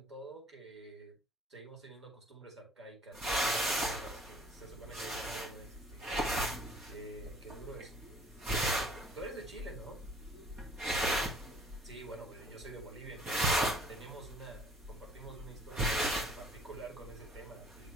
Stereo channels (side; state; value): both; normal; correlation 0.54